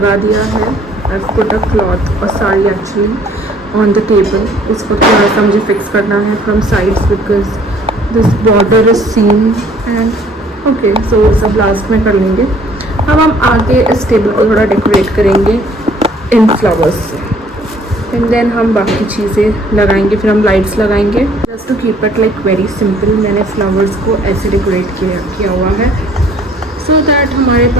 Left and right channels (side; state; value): both; normal; correlation 0.58